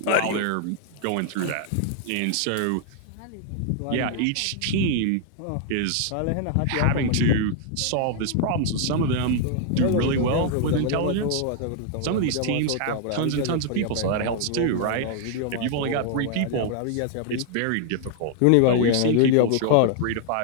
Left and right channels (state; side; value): different; both; correlation 0.00